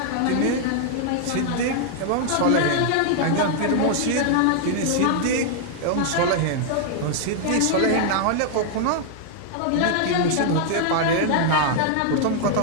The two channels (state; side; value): different; both; correlation 0.00